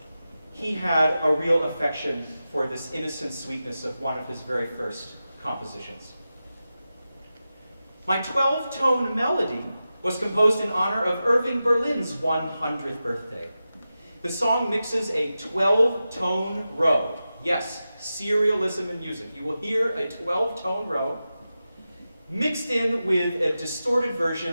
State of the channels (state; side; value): inverted; both; correlation -0.93